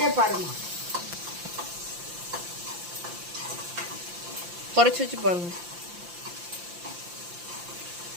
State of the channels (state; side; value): late; left; 5.8 ms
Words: பாருங்க. குறைச்சி வச்சு பாருங்க.